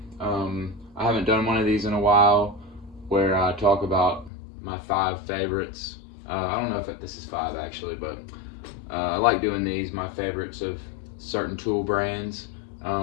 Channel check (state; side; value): drops out; right; at 4.3 s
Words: I haven't done one of these in a while where I talk about my 5 favorites. I don't know if this is 5 actually, but I like doing these, my favorites of certain tool brands.